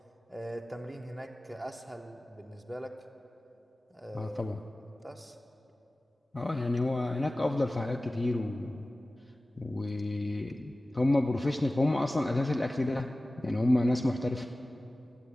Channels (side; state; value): both; normal; correlation 0.97